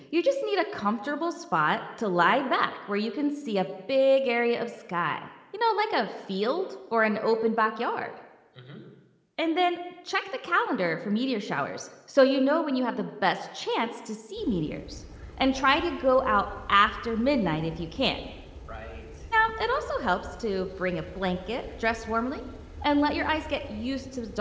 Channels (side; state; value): both; identical; correlation 1.00